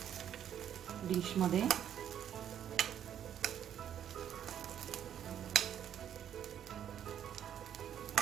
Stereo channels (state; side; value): quieter; left; 9.8 dB